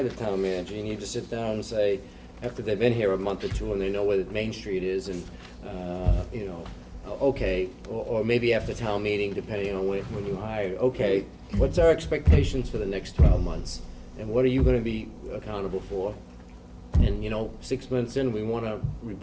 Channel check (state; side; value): identical; both; correlation 1.00